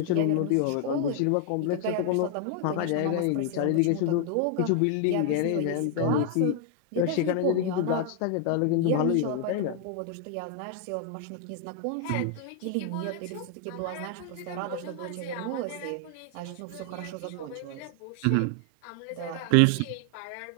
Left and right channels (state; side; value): different; both; correlation 0.00